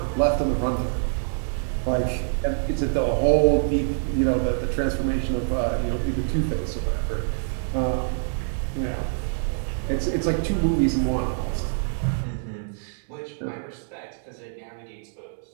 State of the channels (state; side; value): silent; left; 61 dB below the other